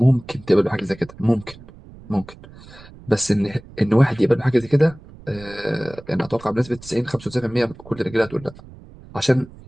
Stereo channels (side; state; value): right; noise; rumble, 20 dB below the sound